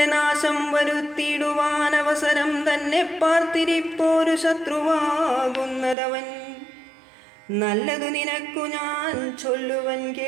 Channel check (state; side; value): drops out; left; at 6.0 s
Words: നാശം വരുത്തിയിടുവാൻ അവസരം തന്നെ പാർത്തിരിപ്പോരു ശത്രുവാകുന്നതവൻ. നല്ലതു നിനക്കു ഞാൻ ചൊല്ലുവൻ